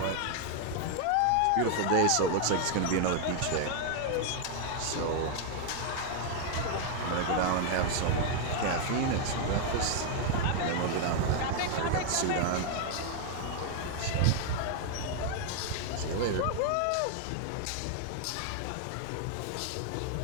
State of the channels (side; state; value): both; different; correlation 0.00